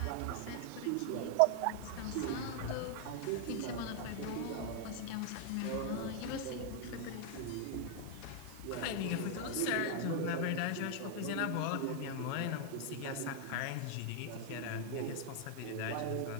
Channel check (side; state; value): both; different; correlation 0.00